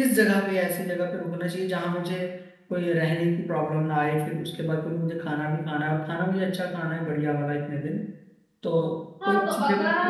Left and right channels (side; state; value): both; identical; correlation 1.00